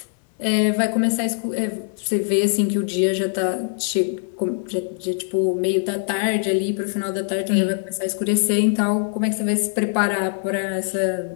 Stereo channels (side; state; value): right; silent; digital silence